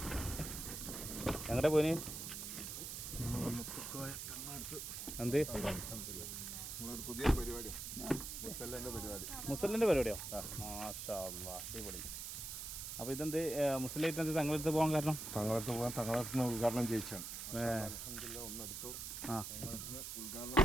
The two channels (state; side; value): noise; right; hiss, 6 dB below the sound